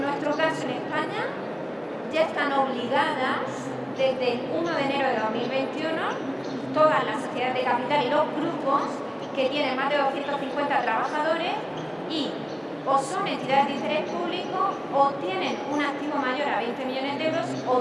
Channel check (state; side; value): identical; both; correlation 1.00